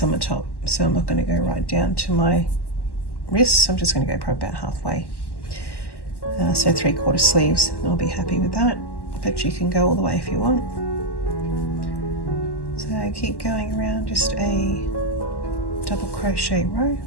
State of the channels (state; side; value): late; right; 1.1 ms